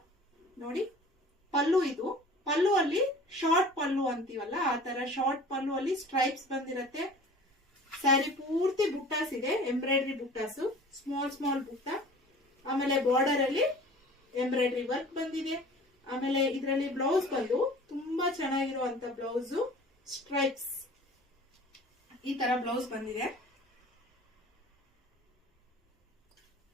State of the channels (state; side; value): normal; both; correlation 0.44